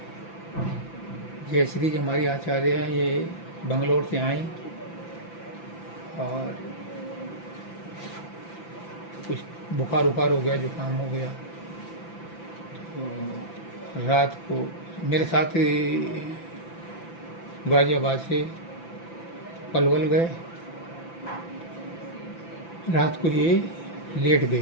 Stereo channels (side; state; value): right; late; 5.9 ms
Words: जय श्री जी हमारी आचार्य हैं, ये बंगलोर से आई और कुछ बुखार उखार हो गया, जुकाम हो गया, तो रात को मेरे साथ गाजियाबाद से पलवल गए। रात को ये लेट